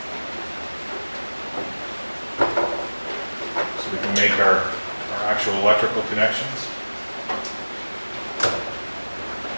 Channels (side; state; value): both; inverted; correlation -1.00